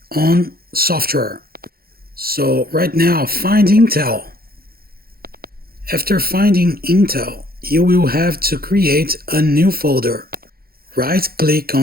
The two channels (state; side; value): late; left; 0.44 ms